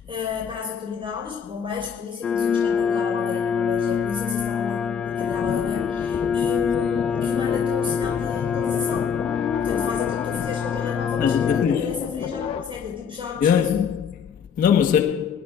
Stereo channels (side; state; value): right; quieter; 7.0 dB